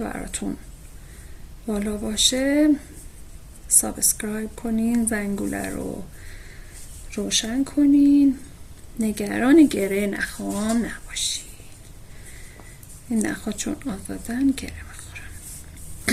بالا باشه، سابسکرایب کنین، زنگوله رو روشن کنین، نگران گره نخام نباشین. این نخها چون آزادن گره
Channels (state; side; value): identical; both; correlation 1.00